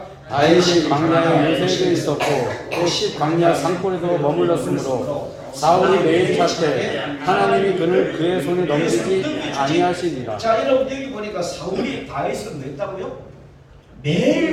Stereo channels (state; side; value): identical; both; correlation 1.00